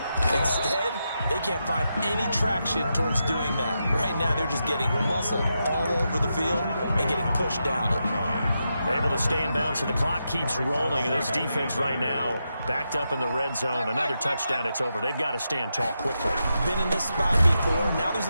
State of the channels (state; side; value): inverted; both; correlation -0.86